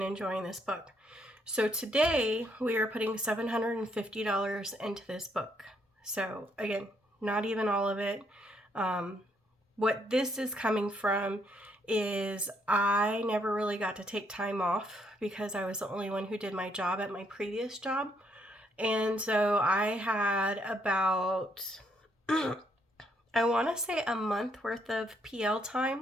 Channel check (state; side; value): normal; both; correlation 0.72